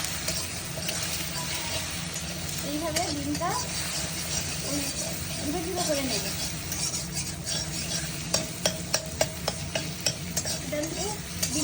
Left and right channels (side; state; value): both; identical; correlation 1.00